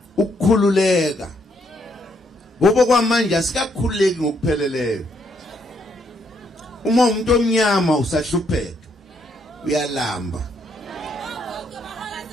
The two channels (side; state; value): both; normal; correlation 0.73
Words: ukukhululeka ngoba kwamanje asikakhululeki ngokupheleleyo uma umuntu omnyama usahlupheka uyalamba